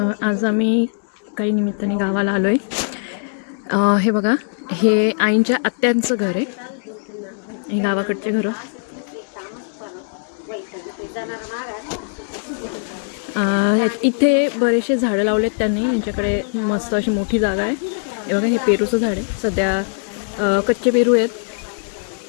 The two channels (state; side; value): silent; right; 65 dB below the other